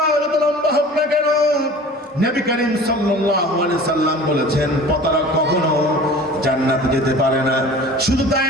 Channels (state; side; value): normal; both; correlation 0.42